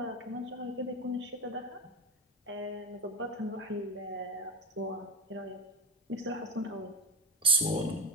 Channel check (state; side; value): normal; both; correlation 0.20